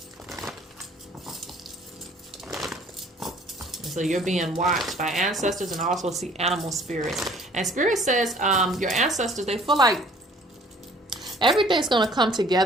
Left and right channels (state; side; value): normal; both; correlation 0.54